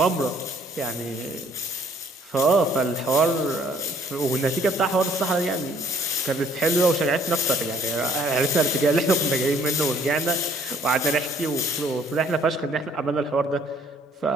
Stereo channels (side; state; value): both; normal; correlation 0.61